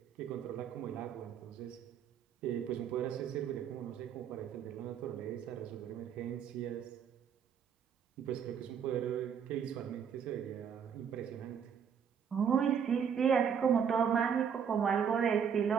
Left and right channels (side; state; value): left; quieter; 7.6 dB